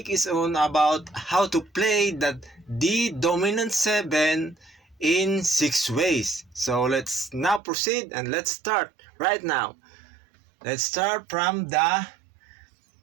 is on about how to play the D dominant 7 in 6 ways. So, let's now proceed and let's start right now. Let's start from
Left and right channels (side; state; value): left; drops out; at 7.6 s